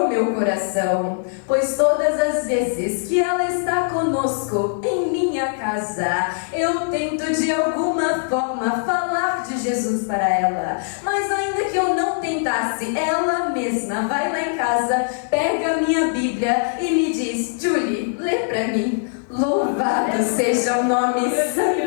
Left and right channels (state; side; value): silent; right; digital silence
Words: meu coração, pois todas as vezes que ela está conosco em minha casa, eu tento de alguma forma falar de Jesus para ela. Mas ainda que eu não tentasse, ela mesma vai lá em casa, pega a minha Bíblia e me diz: Julie, lê para mim. Louvado seja o nome